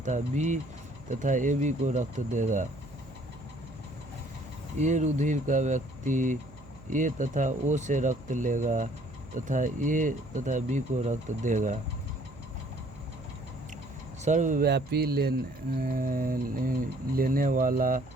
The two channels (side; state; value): right; noise; hum, 21 dB below the sound